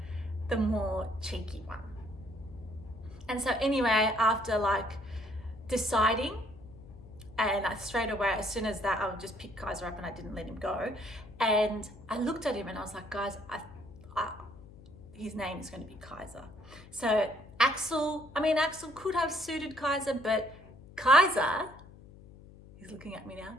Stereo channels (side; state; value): left; noise; hum, 20 dB below the sound